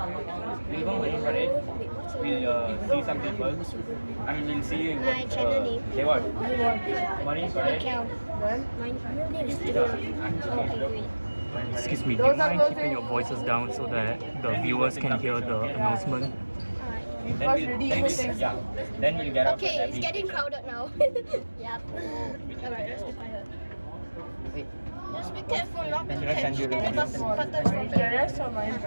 We'll go Marine Parade. We'll see some people. I mean, we'll see My channel name. Say what? Marine Parade. Kel. My name is See Kel. the Okay, great. Excuse me, do you mind keeping your voices down so that the viewers can hear the announcement? Alright. First ready everything. Then we'll get off Okay, at it's getting crowded now. Yep. Alright, let's be quiet. Just be careful not to catch any buttons from here. Terrace or Marine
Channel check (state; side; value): inverted; both; correlation -1.00